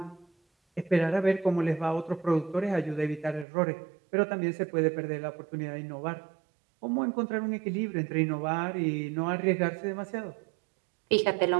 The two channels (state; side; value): drops out; left; at 3.5 s